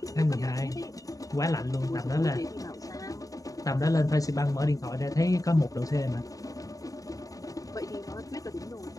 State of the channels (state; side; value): late; right; 0.17 ms